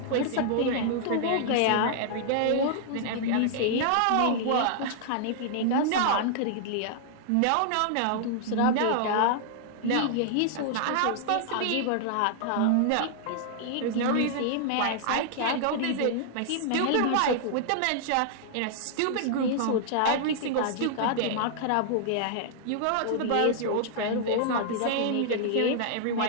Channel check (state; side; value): different; both; correlation -0.01